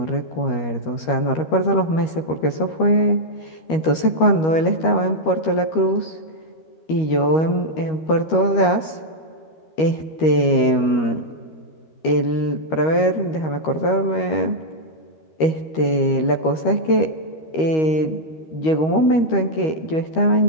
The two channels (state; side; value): late; right; 13 ms